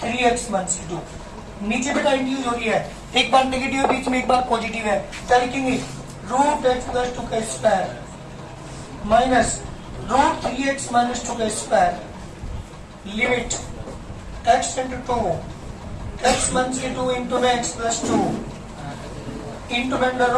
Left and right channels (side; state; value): both; identical; correlation 1.00